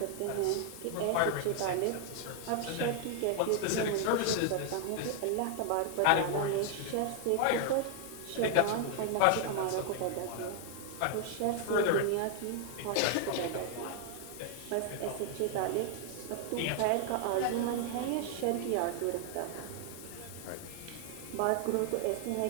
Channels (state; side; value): different; both; correlation 0.00